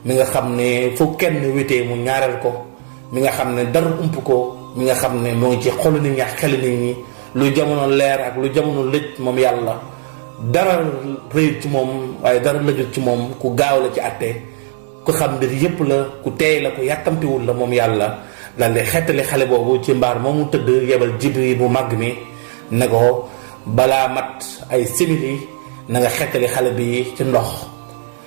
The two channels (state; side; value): silent; left; digital silence